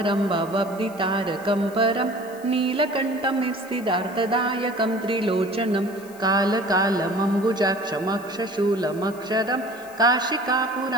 भवब्धितारकं परं नीलकण्ठमित्सिदार्थदायकं त्रिलोचनं कालकालमम्बुजाक्षमक्षशूलमक्षरं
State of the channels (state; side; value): noise; left; hiss, 22 dB below the sound